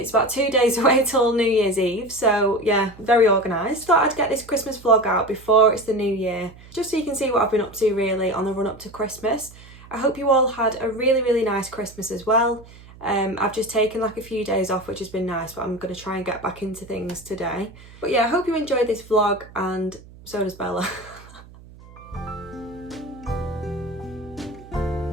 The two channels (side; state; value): right; noise; hum, 21 dB below the sound